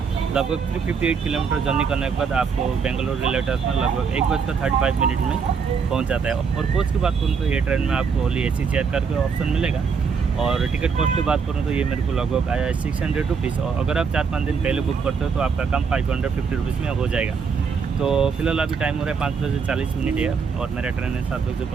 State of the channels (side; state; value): left; quieter; 5.8 dB